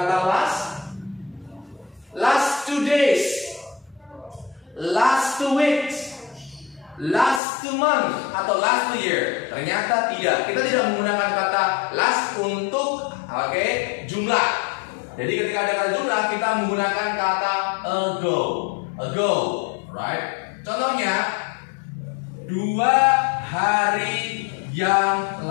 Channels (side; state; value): right; drops out; at 7.4 s